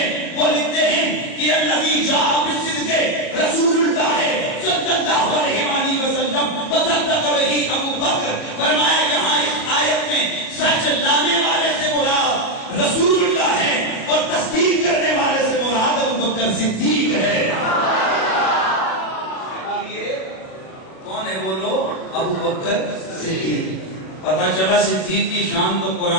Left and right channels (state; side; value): late; right; 38 ms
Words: وہ لکھتے ہیں کہ الذی جاء بالصدق رسول اللہ ہے صلی اللہ علیہ وسلم وصدق به ابو بکر. فرمایا جہاں اس آیت میں سچ لانے والے سے مراد رسول اللہ ہے اور تصدیق کرنے والے سے مراد ابو بکر صدیق ہے. کون ہے بولو؟ ابو بکر صدیق. پتہ چلا صدیق کی شان تو